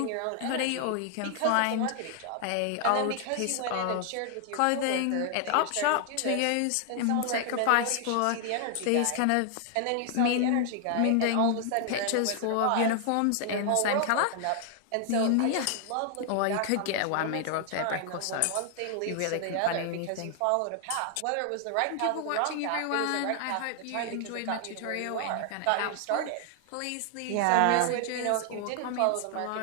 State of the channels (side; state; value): both; different; correlation 0.00